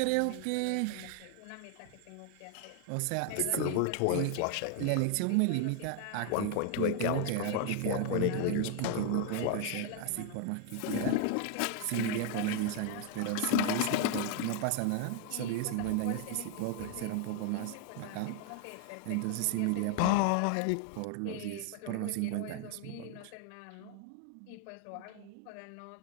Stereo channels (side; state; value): both; different; correlation 0.00